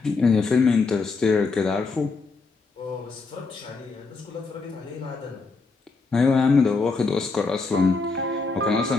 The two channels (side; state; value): right; quieter; 4.1 dB